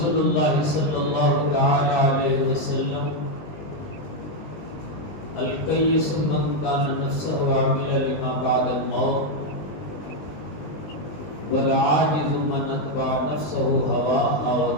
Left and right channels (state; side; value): late; right; 19 ms